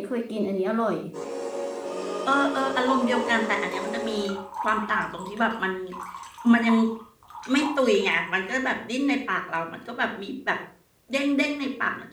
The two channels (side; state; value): both; identical; correlation 1.00